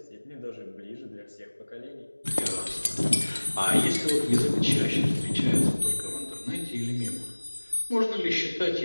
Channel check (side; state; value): both; inverted; correlation -1.00